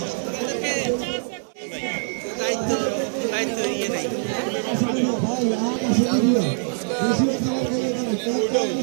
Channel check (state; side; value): silent; left; 58 dB below the other